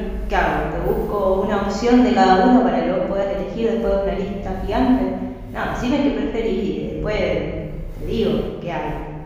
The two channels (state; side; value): identical; both; correlation 1.00